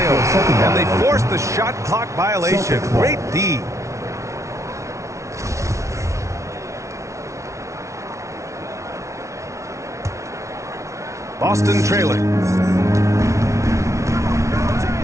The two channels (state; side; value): late; left; 0.14 ms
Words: And they force the shot clock violation. Great D. Boston trailing.